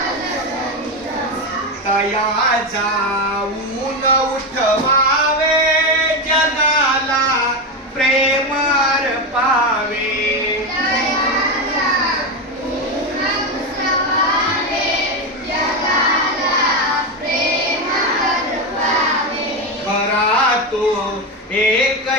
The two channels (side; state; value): both; normal; correlation 0.13